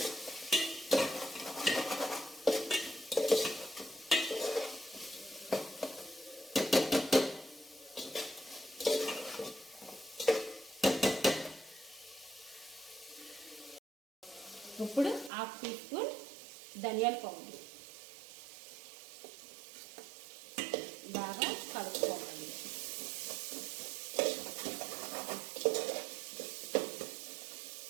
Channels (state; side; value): drops out; left; at 15.3 s